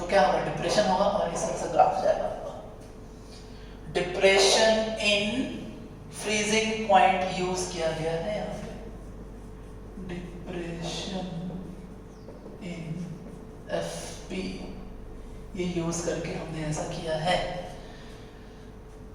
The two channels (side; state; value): both; identical; correlation 1.00